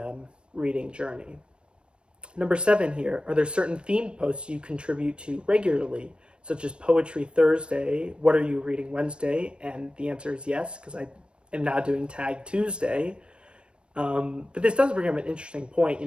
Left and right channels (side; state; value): left; late; 0.055 ms